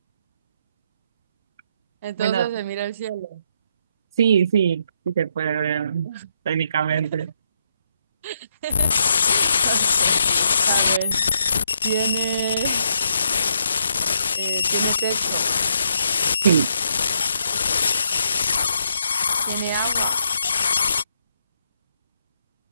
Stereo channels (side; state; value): both; inverted; correlation -0.77